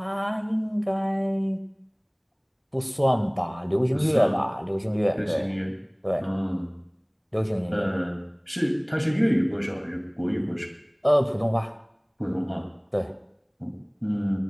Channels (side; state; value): both; identical; correlation 1.00